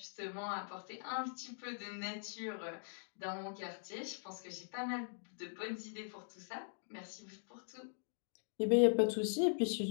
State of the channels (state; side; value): silent; right; digital silence